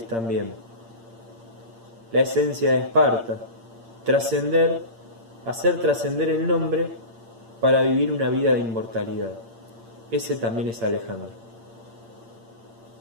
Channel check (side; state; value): left; late; 8.7 ms